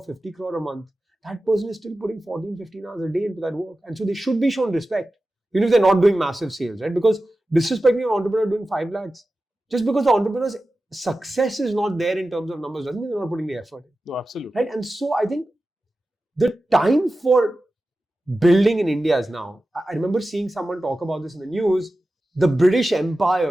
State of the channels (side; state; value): both; normal; correlation 0.94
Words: 50 crore a month, that person is still putting 14, 15 hours a day into that work. And so they should be shown respect, even if they're not doing massive sales, right? Because disrespecting an entrepreneur doing 5 lakhs, just because the entrepreneur's success is not there in terms of numbers, doesn't mean they're not putting the effort in. No, absolutely. Right? And so I think the time for building in India is now. I remember seeing someone talk about this in the news. The British